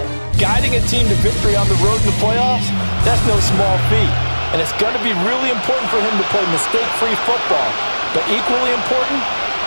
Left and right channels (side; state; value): both; inverted; correlation -1.00